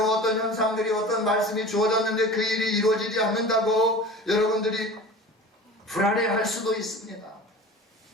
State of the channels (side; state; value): both; normal; correlation 0.36